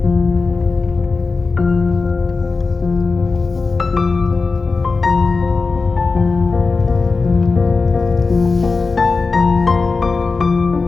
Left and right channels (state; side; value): quieter; right; 4.2 dB